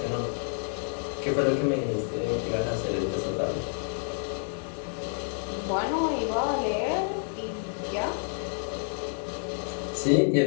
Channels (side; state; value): right; silent; 56 dB below the other